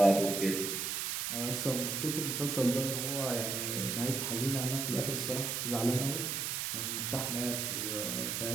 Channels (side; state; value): right; noise; hiss, 1 dB below the sound